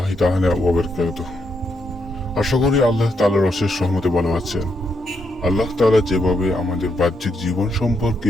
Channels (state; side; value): normal; both; correlation 0.79